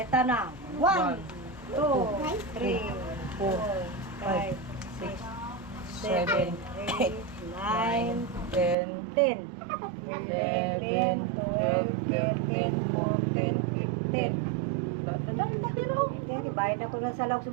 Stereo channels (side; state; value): left; drops out; at 8.8 s